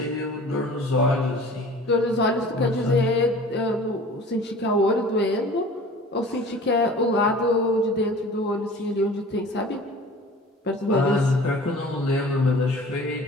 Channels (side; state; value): both; normal; correlation 0.44